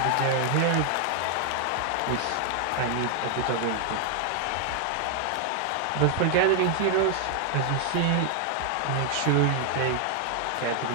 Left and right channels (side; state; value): both; different; correlation 0.00